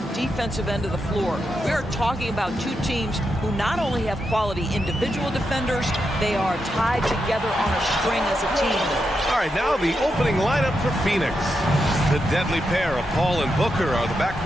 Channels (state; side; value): normal; both; correlation 0.85